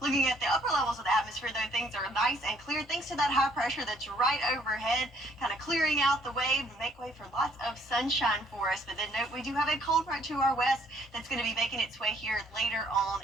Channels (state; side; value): normal; both; correlation 0.64